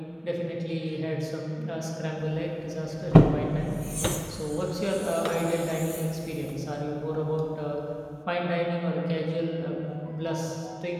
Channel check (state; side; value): identical; both; correlation 1.00